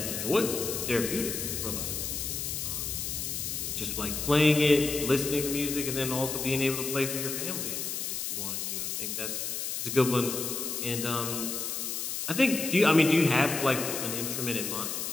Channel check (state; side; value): noise; left; hiss, 3 dB below the sound